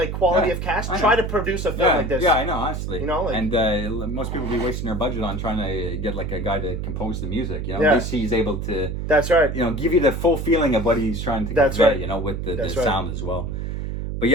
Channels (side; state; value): right; noise; hum, 4 dB below the sound